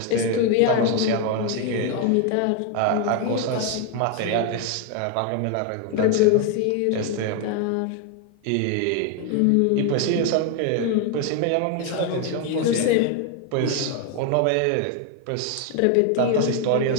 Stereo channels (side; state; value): both; different; correlation 0.01